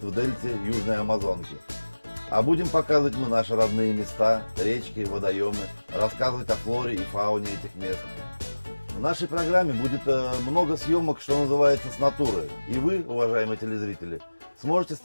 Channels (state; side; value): inverted; both; correlation -1.00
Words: в дельте Южной Амазонки. А будем показывать мы наши родные места, речки, водоемы, рассказывать о флоре и фауне этих мест. В нашей программе будет много съемок, что называется, с натуры. И вы, уважаемые телезрители, сможете